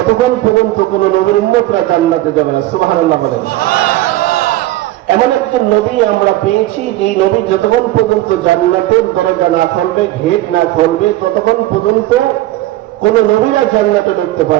পর্যন্ত কোন নবীর উম্মতরা জান্নাতে যাবে না। সুবহানাল্লাহ বলেন। এমন একজন নবী আমরা পেয়েছি, যে নবী যতক্ষণ পর্যন্ত জান্নাতের দরজা না খুলবে, গেট না খুলবে, ততক্ষণ পর্যন্ত কোন নবীরা জান্নাতে ঢুকতে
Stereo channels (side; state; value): left; quieter; 16.2 dB